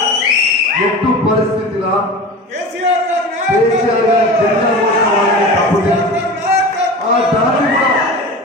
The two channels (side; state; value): both; normal; correlation 0.32